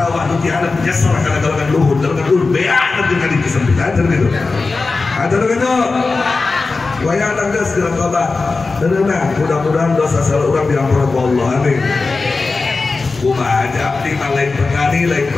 nu tiada nyesel kana galungan luhur beak nanti ka disempitan gitu. Ada begitu, wayang nangges dalam tobat, tenang. Mudah-mudahan dosa salah orang diampuni Allah, amin. Kumaha aja abdi lain petani, lain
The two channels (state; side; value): quieter; right; 3.9 dB